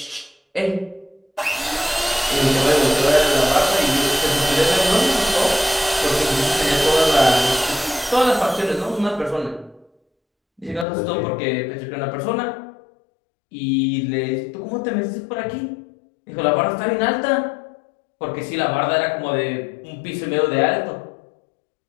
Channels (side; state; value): right; drops out; at 10.9 s